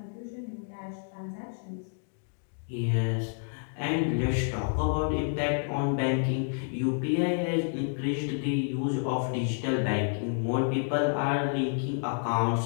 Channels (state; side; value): silent; right; digital silence